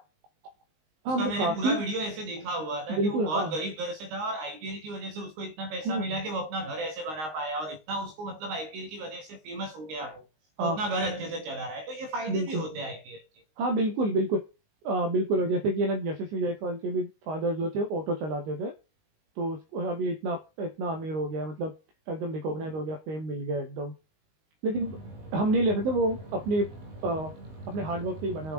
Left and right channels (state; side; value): late; left; 19 ms